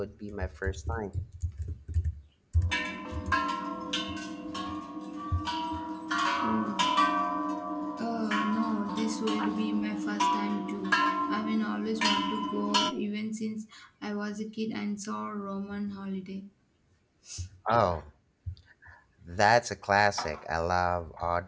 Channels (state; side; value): identical; both; correlation 1.00